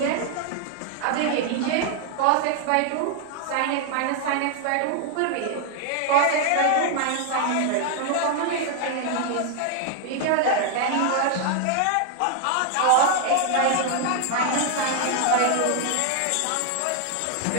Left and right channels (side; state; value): both; different; correlation 0.00